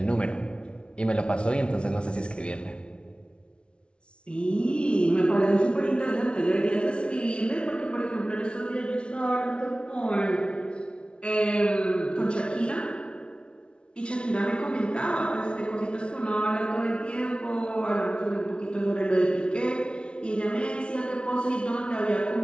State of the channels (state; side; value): late; right; 0.058 ms